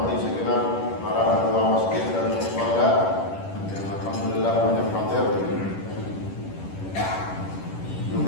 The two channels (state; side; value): late; right; 10 ms